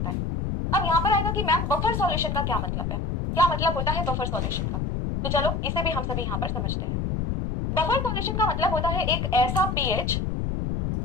है। अब यहाँ पर आएगा कि मैम बफर सॉल्यूशन का क्या मतलब है, क्या मतलब होता है बफर सॉल्यूशन का, तो चलो इसे भी हम सभी यहाँ पर समझते हैं। बफर सॉल्यूशन का मतलब होता है एक ऐसा पीएच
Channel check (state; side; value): noise; left; rumble, 1 dB below the sound